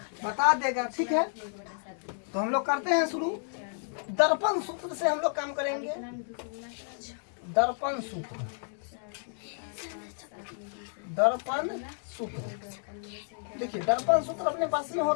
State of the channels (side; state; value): right; silent; 57 dB below the other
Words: बता देगा। ठीक है, तो हम लोग करते हैं शुरू। दर्पण सूत्र से हम लोग काम करेंगे। दर्पण सूत्र, दर्पण सूत्र देखिए, दर्पण सूत्र अपने पास में